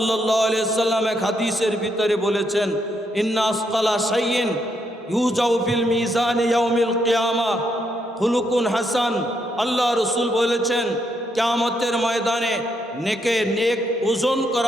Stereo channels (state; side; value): normal; both; correlation 0.77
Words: আলাইহি ওয়াসাল্লাম এক হাদিসের ভিতরে বলেছেন, ইন্না আসকালা শাইইন ইউজাউ ফিল মিজান ইয়াউমিল কিয়ামাহ খুলুকুন হাসান। আল্লাহ রাসূল বলেছেন, কিয়ামতের ময়দানে নেক ওজন